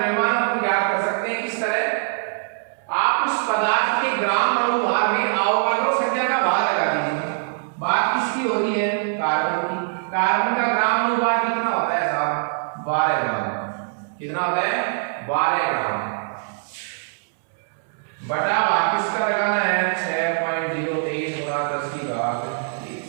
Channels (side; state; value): left; silent; 64 dB below the other